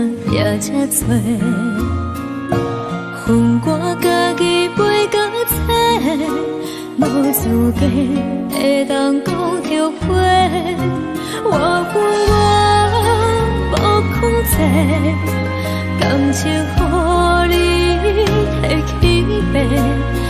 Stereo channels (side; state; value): both; identical; correlation 1.00